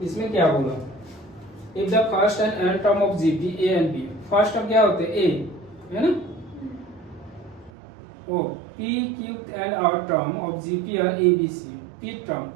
इसमें क्या बोला, if the first and and term of GP A and B, first term क्या होते हैं ए, है ना, O P Q and R term of GP R A B C, P term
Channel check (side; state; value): left; drops out; at 7.7 s